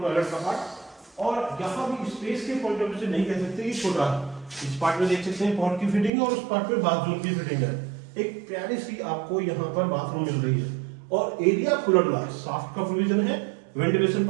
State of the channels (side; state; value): left; drops out; at 6.1 s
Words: टॉयलेट का पार्ट, और यहाँ भी स्पेस के पॉइंट ऑफ व्यू से नहीं कह सकते कि छोटा है। इस पार्ट में देख सकते हैं पॉट की फिटिंग है और उस पार्ट में बाथरूम की फिटिंग है। एक प्यारी सी आपको यहाँ पर बाथरूम मिल रही है और एरिया खुला डुला है, साफ्ट का प्रोविजन है, वेंटिलेशन